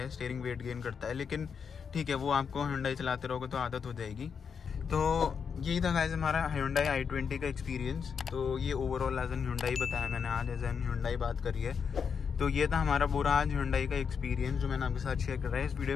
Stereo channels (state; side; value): quieter; right; 6.5 dB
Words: स्टीयरिंग वेट गेन करता है, लेकिन ठीक है वो आपको Hyundai चलाते रहोगे तो आदत हो जाएगी। तो यही था गाइस हमारा Hyundai i20 का एक्सपीरियंस। तो ये ओवरऑल एज एन Hyundai बताया मैंने, आज एज एन Hyundai बात करी है। तो ये था हमारा पूरा आज Hyundai का एक्सपीरियंस जो मैंने आपके साथ शेयर कर रहा है। इस